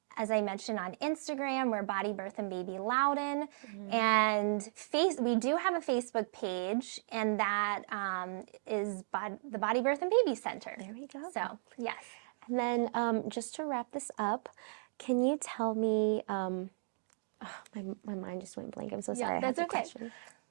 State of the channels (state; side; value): silent; left; digital silence